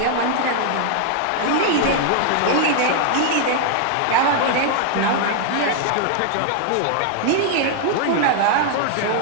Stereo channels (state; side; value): different; both; correlation 0.00